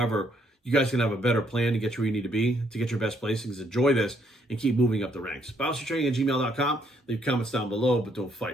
you guys can have a better plan to get you where you need to be, to get your best placings. Enjoy this and keep moving up the ranks. bios3training@gmail.com. Leave comments down below, but don't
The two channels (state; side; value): normal; both; correlation 0.71